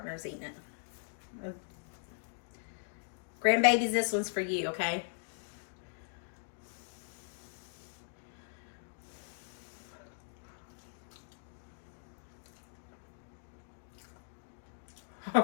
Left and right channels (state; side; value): silent; right; digital silence